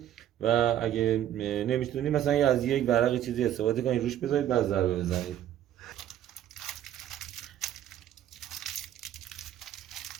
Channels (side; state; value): left; quieter; 11.4 dB